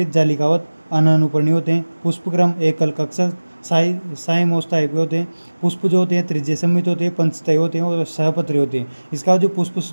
जालिकावत अनानुपर्णी होते हैं। पुष्पक्रम एकल कक्षक साइमोस टाइप के होते हैं। पुष्प जो होते हैं त्रिज्य सम्मित होते हैं, पंचतय होते हैं और सहपत्री होते हैं। इसका जो पुष्प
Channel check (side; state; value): both; inverted; correlation -1.00